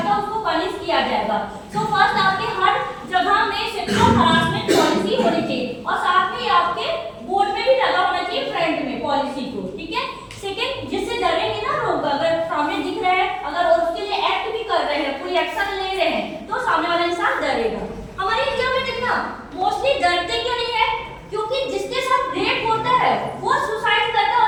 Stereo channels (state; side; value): identical; both; correlation 1.00